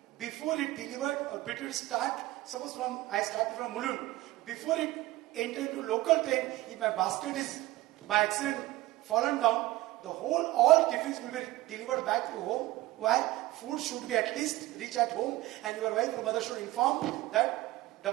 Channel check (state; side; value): quieter; left; 17.5 dB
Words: before it delivered or before it start, suppose I started from Mulund, before it entered into local train, if my basket is by accident fallen down, all tiffins will be delivered back to home. Why? Food should be at least reach at home, and your wife or mother should inform that